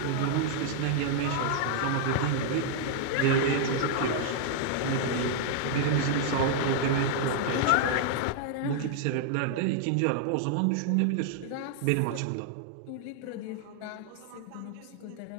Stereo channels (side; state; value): both; different; correlation -0.01